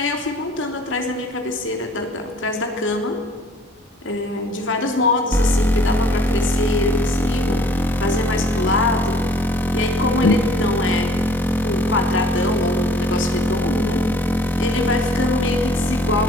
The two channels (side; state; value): both; normal; correlation 0.55